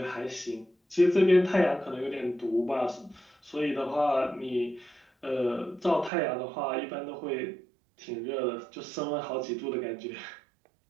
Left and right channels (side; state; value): left; drops out; at 6.1 s